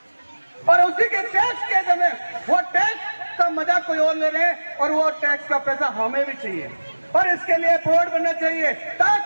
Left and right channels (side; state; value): both; inverted; correlation -1.00